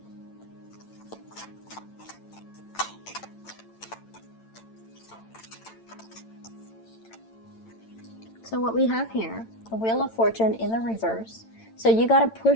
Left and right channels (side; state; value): right; late; 8.9 ms